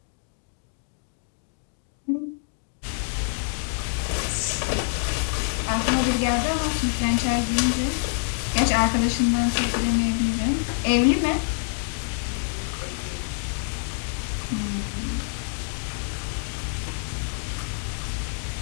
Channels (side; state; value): right; silent; digital silence